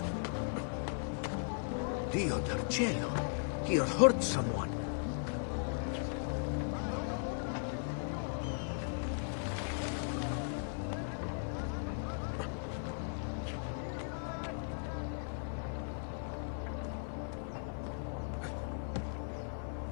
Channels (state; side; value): silent; right; 53 dB below the other